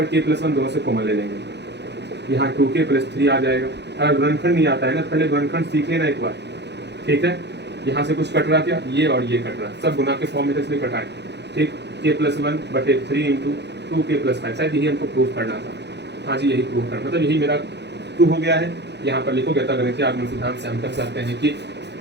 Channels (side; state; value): left; late; 0.50 ms